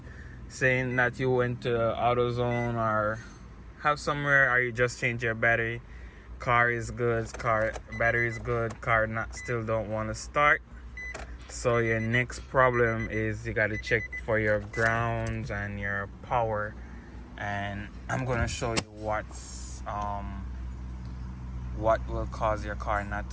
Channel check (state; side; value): identical; both; correlation 1.00